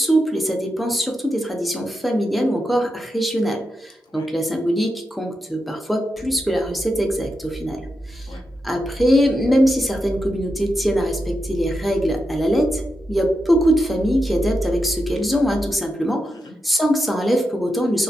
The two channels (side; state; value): both; normal; correlation 0.87